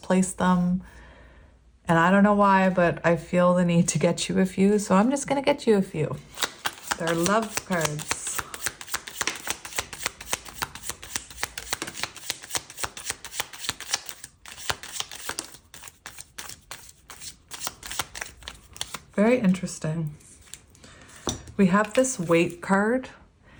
them. And I don't know why, but I feel the need to get you a few, so I'm just going to get you a few. They're love cards. Very interesting. We have this Weight card,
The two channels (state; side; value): identical; both; correlation 1.00